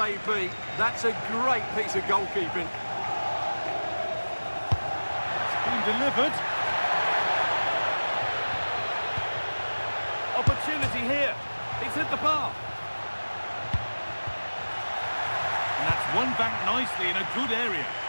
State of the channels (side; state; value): both; inverted; correlation -1.00